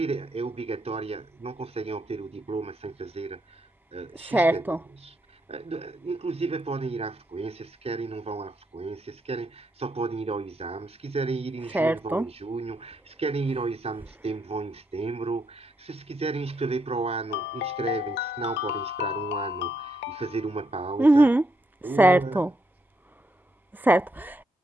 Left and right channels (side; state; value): both; normal; correlation 0.78